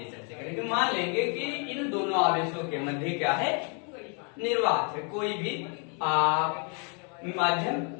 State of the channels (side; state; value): right; quieter; 38.1 dB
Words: चर्चा करेंगे। मान लेंगे कि इन दोनों आवेशों के मध्य क्या है, निर्वात है, कोई भी माध्यम